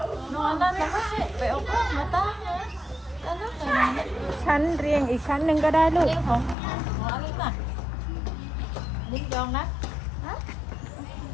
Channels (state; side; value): drops out; right; at 6.6 s